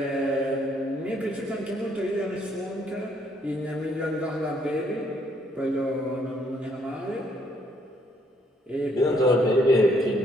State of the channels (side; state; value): both; normal; correlation 0.69